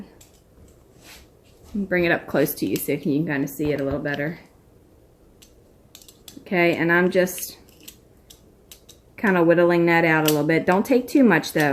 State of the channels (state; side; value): identical; both; correlation 1.00